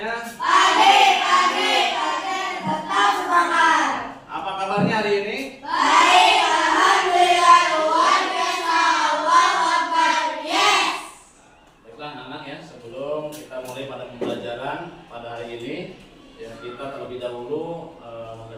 Pagi, tetap semangat. Apa kabarnya hari ini? Baik, alhamdulillah, luar biasa. Allahu Akbar. Yes. Baiklah anak-anak ya, sebelum kita mulai pada pembelajaran pada hari ini, ya kita terlebih dahulu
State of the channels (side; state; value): both; identical; correlation 1.00